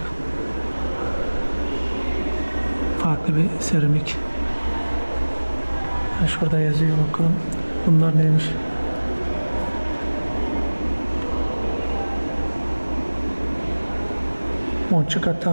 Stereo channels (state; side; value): inverted; both; correlation -1.00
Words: Farklı bir seramik. Şurada yazıyor, bakalım. Bunlar neymiş? Moçuka